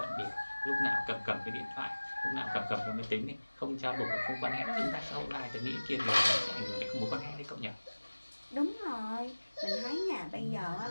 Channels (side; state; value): both; inverted; correlation -1.00